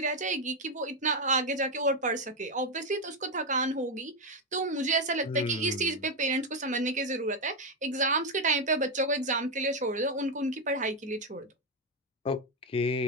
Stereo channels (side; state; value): both; normal; correlation 0.06